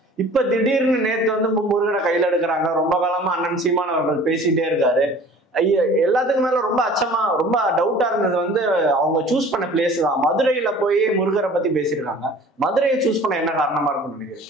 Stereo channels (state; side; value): normal; both; correlation 0.47